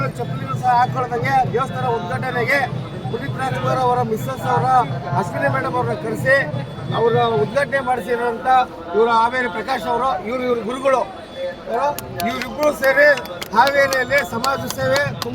ಚಪ್ಪಲಿನೂ ಸಹ ಹಾಕೊಳ್ಳೋದಂಗೆ ದೇವಸ್ಥಾನ ಉದ್ಘಾಟನೆಗೆ ಪುನೀತ್ ರಾಜ್ಕುಮಾರ್ ಅವರ ಮಿಸ್ಸಸ್ ಅವರ ಅಶ್ವಿನಿ ಮೇಡಮ್ ಅವ್ರನ್ನ ಕರೆಸಿ ಅವರ ಉದ್ಘಾಟನೆ ಮಾಡಿಸಿರೋಂಥ ಇವರು ಹಾವೇರಿ ಪ್ರಕಾಶ್ ಅವರು, ಇವ್ರ ಗುರುಗಳು. ಇವರಿಬ್ಬರು ಸೇರಿ ಹಾವೇರಿಯಲ್ಲಿ ಸಮಾಜ ಸೇವೆ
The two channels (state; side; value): identical; both; correlation 1.00